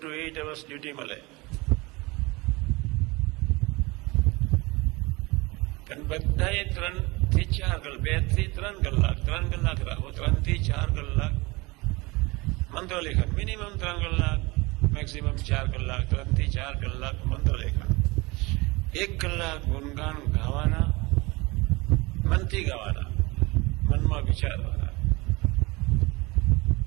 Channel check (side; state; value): left; quieter; 24.2 dB